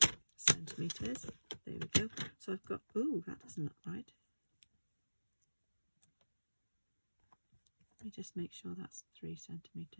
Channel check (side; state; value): both; inverted; correlation -1.00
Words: centimeters. There we go. So I've got, ooh, that doesn't look right. Let me just make sure that's 3